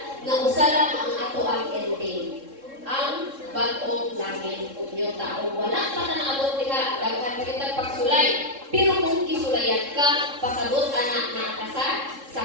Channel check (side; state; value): left; late; 3.7 ms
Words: na usa lang ang ato ang ending. Ang bag-ong langit ug tao wala pa na naabot diha daghan pa kitag pagsulay, pero kung kisulayan ka pasabot ana na sa